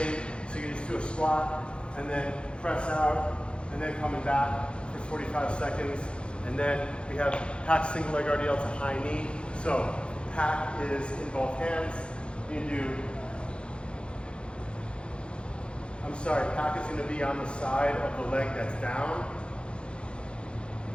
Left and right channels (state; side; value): late; right; 0.056 ms